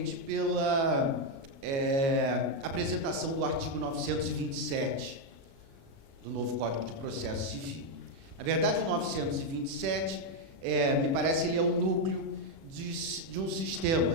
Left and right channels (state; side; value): late; left; 36 ms